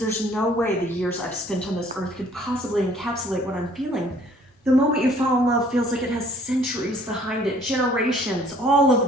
no way the years I've spent on this earth could possibly encapsulate what I'm feeling. The moment you fall in love feels like it has centuries behind it, generations, all of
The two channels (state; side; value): normal; both; correlation 0.57